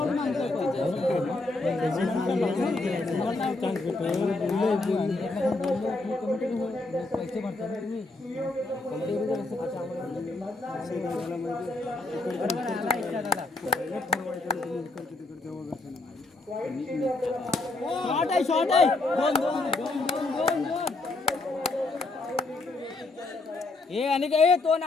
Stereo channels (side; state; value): right; quieter; 3.2 dB